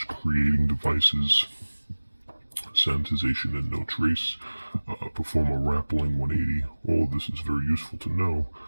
creating devices, sanitization and no trace, perform a rappelling 180. All of this is very useful to know,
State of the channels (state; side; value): inverted; both; correlation -1.00